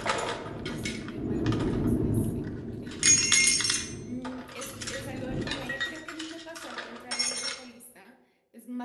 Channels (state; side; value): identical; both; correlation 1.00